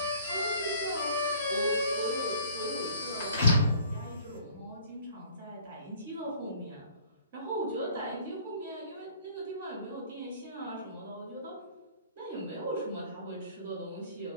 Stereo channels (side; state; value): both; inverted; correlation -0.54